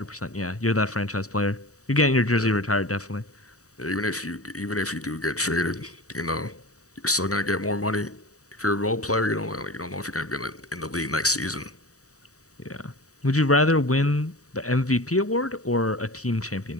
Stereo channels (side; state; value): right; late; 0.66 ms